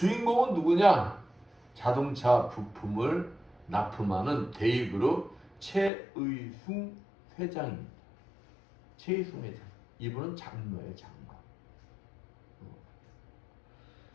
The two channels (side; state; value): right; drops out; at 5.9 s